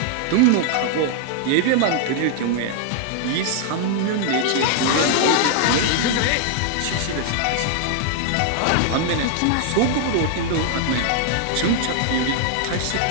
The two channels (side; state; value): both; different; correlation 0.00